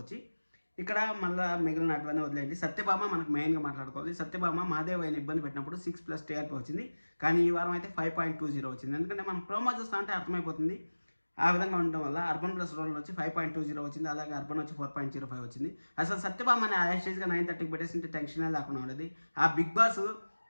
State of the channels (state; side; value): inverted; both; correlation -1.00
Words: వచ్చి. ఇక్కడ మళ్ళీ మిగిలిన అటువన్నీ వదిలేండి. సత్యభామ మనకు మెయిన్గా మాట్లాడుకోవాలి. సత్యభామ మహాదేవయ్యని ఇబ్బంది పెట్టినప్పుడు 6+ టీఆర్పీ వచ్చింది, కానీ ఈ వారం అయితే 5.20 వచ్చింది. ఎందుకంటే మనం ప్రోమో చూస్తా అంటే అర్థమైపోతుంది. ఆ విధంగా ఉండడం వల్ల అర్బన్ ప్లస్ రోడ్లో వచ్చి 5.20 వచ్చింది. అలాగే అర్బన్ వచ్చి 4.05 వచ్చింది. అసలు సత్యభామ అనే యాస్టేజ్గా 9:30కి పెట్టేసింటే టెన్షనే లేకుండా ఉండేది. ఆ బిగ్ బాస్